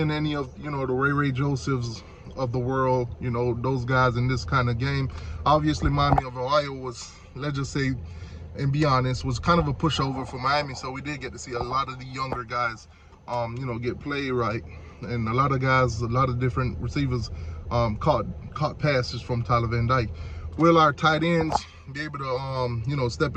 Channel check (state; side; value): identical; both; correlation 1.00